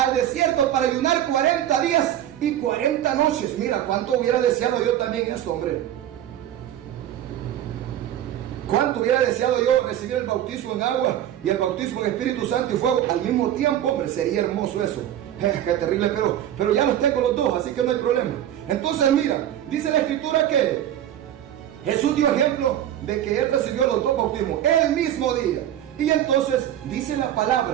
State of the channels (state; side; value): quieter; left; 11.6 dB